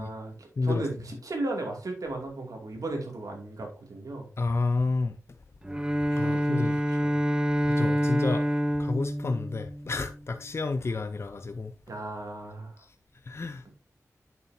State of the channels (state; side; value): normal; both; correlation 0.93